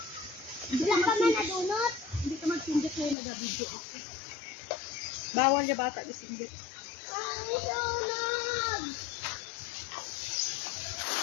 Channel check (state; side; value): drops out; right; at 3.2 s